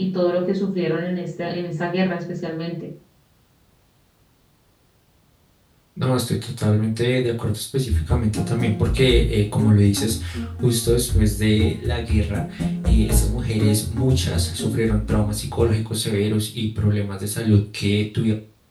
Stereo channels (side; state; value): both; identical; correlation 1.00